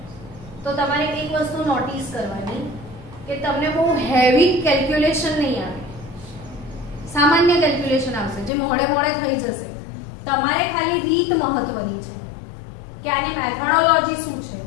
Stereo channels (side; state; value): right; drops out; at 8.5 s